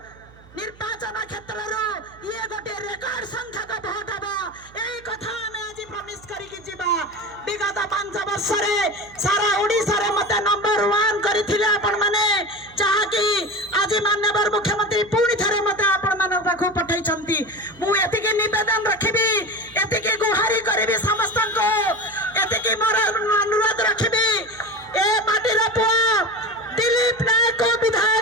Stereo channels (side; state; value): right; noise; hum, 24 dB below the sound